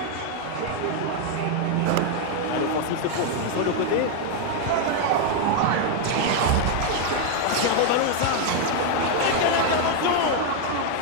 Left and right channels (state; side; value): different; both; correlation 0.01